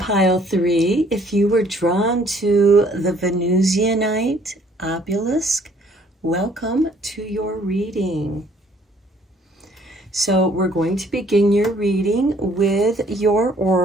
3. If you were drawn to the Venusianite obelisk, welcome to your reading. So we're going to begin your reading with your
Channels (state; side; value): normal; both; correlation 0.61